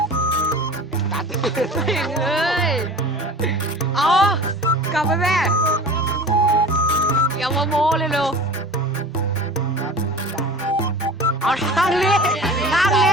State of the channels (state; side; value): normal; both; correlation 0.39